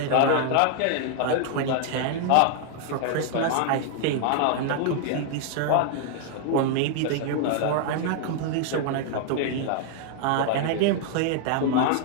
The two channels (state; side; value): different; both; correlation 0.00